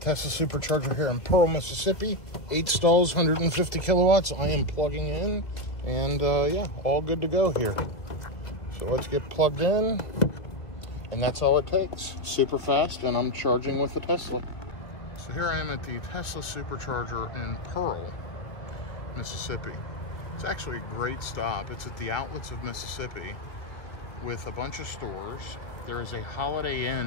Supercharger here in Pearl, Mississippi. 8 stalls, 150 kilowatts. I am plugging in, and yeah, all good to go here. So let's get plugged in, and that's all it takes. Super fast, and I'm charging with the Tesla. So here I am at the Tesla Supercharger in Pearl, Mississippi. It's actually a great stop. It's at the outlets of Mississippi with a bunch of stores. There is a Holiday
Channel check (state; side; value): late; right; 2.0 ms